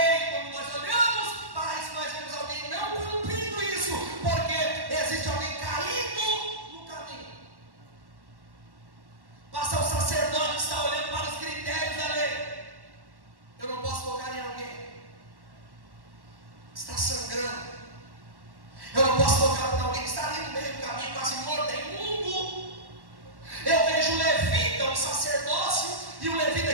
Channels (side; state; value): left; late; 1.1 ms